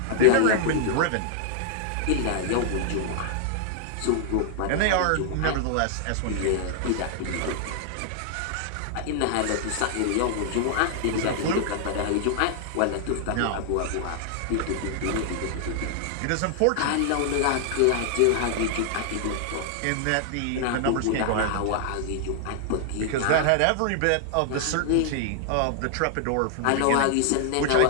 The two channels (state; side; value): different; both; correlation 0.00